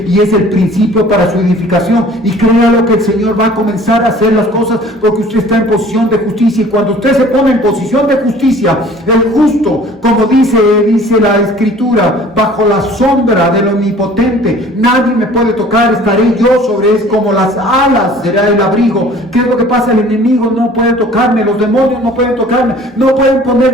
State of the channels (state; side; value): normal; both; correlation 0.50